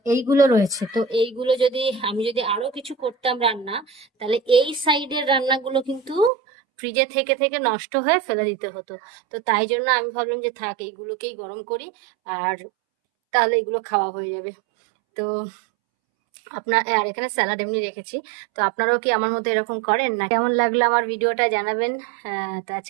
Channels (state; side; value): drops out; left; at 6.3 s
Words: এইগুলো রয়েছে। তো এইগুলো যদি আমি যদি আরো কিছু করতাম রান্না, তাহলে এই সাইডের রান্নাগুলো কিন্তু ফ্রিজে থেকে থেকে নষ্ট হয়ে ফেলে দিতে হতো। তো তাই জন্য আমি ভাবলাম যে থাক, এইগুলোকেই গরম করি, আর তাহলে এগুলো খাওয়া হয়ে যাবে। তো আর এখানে স্যালাড এমনি রেখেছি। তো আপনারাও কি আমার মতো এরকম করেন না? কেমন লাগলো আমার ভিডিওটা জানাবেন। তো